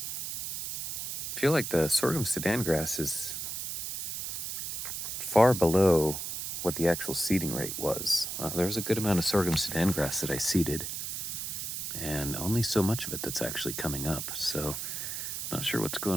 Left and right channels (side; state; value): right; noise; hiss, 4 dB below the sound